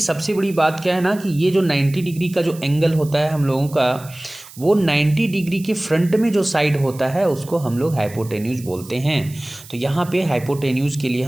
सबसे बड़ी बात क्या है ना कि ये जो 90 डिग्री का जो एंगल होता है हम लोगों का, वो 90 डिग्री के फ्रंट में जो साइड होता है उसको हम लोग हाइपोटेन्यूज बोलते हैं। तो यहाँ पे हाइपोटेन्यूज के लिए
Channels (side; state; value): right; noise; hiss, 19 dB below the sound